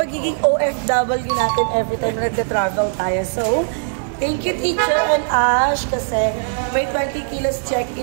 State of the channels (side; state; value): left; silent; digital silence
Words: OFW natin every time na nagka-travel tayo. So, thank you Teacher and Ash kasi may 20 kilos